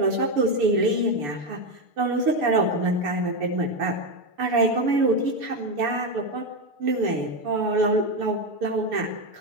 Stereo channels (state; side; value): late; left; 6.9 ms